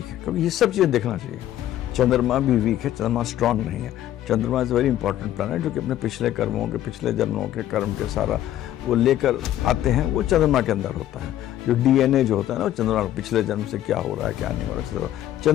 है, क्योंकि ये सब चीज़ें देखना चाहिए। चंद्रमा भी वीक है, चंद्रमा स्ट्रांग नहीं है। चंद्रमा इज़ वेरी इंपॉर्टेंट प्लैनेट जो कि अपने पिछले कर्मों के, पिछले जन्मों के कर्म के सारा वो लेकर आते हैं, वो चंद्रमा के अंदर होता है। जो डीएनए जो होता है ना, वो चंद्रमा पिछले जन्म से क्या हो रहा है क्या नहीं हो रहा है।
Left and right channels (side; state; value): right; quieter; 12.6 dB